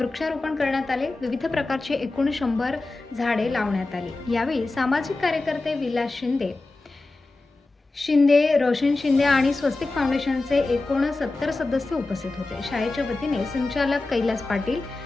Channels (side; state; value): right; quieter; 3.2 dB